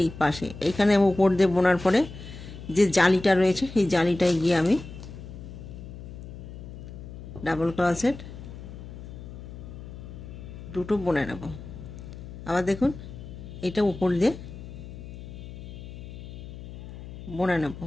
এই পাশে এইখানে আমি উপর দিয়ে বোনার পরে যে জালিটা রয়েছে সেই জালিটায় গিয়ে আমি ডাবল ক্রোশেট দুটো বুনে নেব। আবার দেখুন এটা উপর দিয়ে বুনে নেব,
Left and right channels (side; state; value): left; noise; hum, 12 dB below the sound